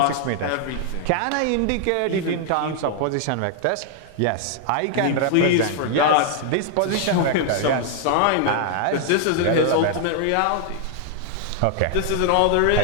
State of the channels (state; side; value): different; both; correlation 0.00